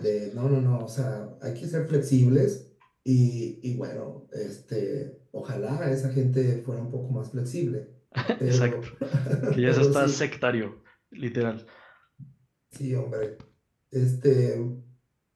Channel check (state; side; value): identical; both; correlation 1.00